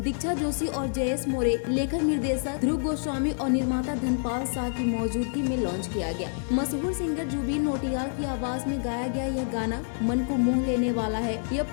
जोशी और जयेश मोरे, लेखक निर्देशक ध्रुव गोस्वामी और निर्माता धनपाल शाह की मौजूदगी में लॉन्च किया गया। मशहूर सिंगर जुबिन नौटियाल की आवाज में गाया गया यह गाना मन को मोह लेने वाला है। यह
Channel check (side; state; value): right; silent; digital silence